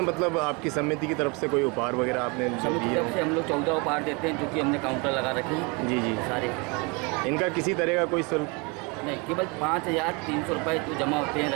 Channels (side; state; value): left; quieter; 29.8 dB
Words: मतलब आपकी समिति की तरफ से कोई उपहार वगैरह आपने जो समिति की दिए? तरफ से हम लोग 14 उपहार देते हैं, जो कि हमने काउंटर लगा रखे हैं। जी जी। सारे इनका किसी तरह का कोई शुल्क नहीं, केवल 5,300 रुपये जो जमा होते हैं